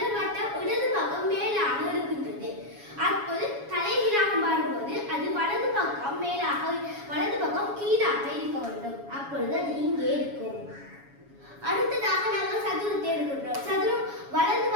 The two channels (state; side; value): late; left; 7.2 ms